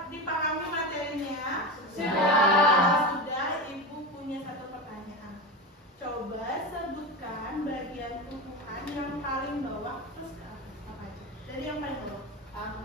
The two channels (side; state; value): both; normal; correlation 0.21